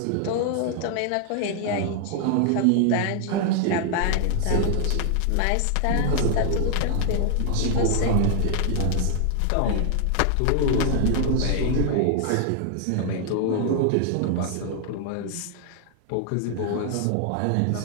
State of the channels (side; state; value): both; different; correlation 0.00